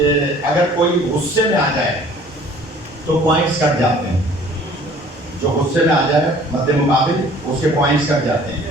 اگر کوئی غصے میں آ جائے تو پوائنٹس کٹ جاتے ہیں. جو غصے میں آ جائے مد مقابل اس کے پوائنٹس کٹ جاتے ہیں.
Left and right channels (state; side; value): normal; both; correlation 0.52